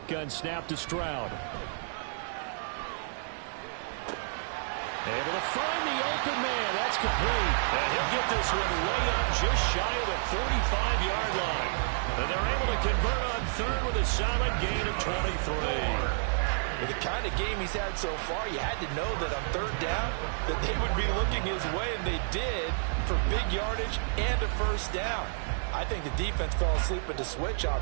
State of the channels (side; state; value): left; silent; digital silence